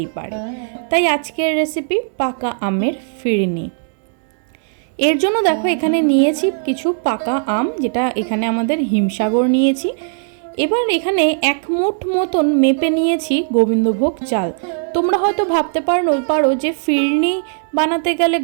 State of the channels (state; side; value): silent; left; digital silence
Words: পারে। তাই আজকের রেসিপি পাকা আমের ফিরনি। এর জন্য দেখো এখানে নিয়েছি কিছু পাকা আম, যেটা এখানে আমাদের হিমসাগর নিয়েছি। এবার এখানে 1 মুঠ মতন মেপে নিয়েছি গোবিন্দভোগ চাল। তোমরা হয়তো ভাবতে পারো যে ফিরনি বানাতে গেলে